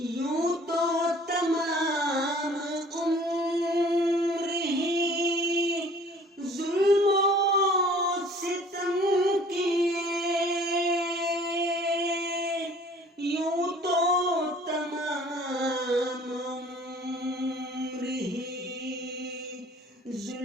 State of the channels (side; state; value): both; normal; correlation 0.52